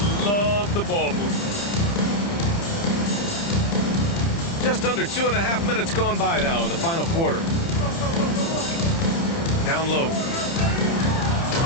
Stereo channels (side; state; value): right; late; 30 ms